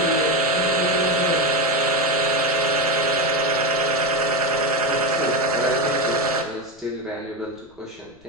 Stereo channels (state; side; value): noise; left; rumble, 30 dB below the sound